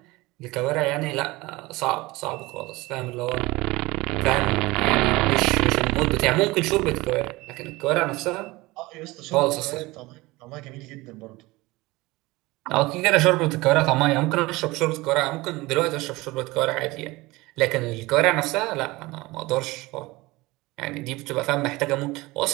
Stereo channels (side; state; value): left; quieter; 21.1 dB